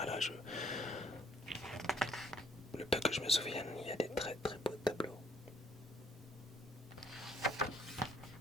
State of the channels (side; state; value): both; normal; correlation 0.62